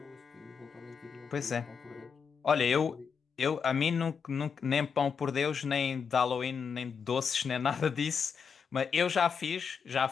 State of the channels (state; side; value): quieter; right; 6.3 dB